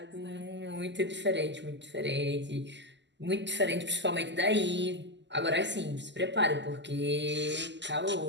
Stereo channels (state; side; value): late; left; 0.52 ms